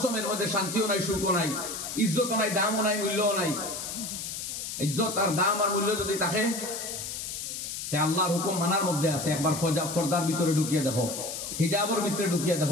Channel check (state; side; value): noise; left; hiss, 6 dB below the sound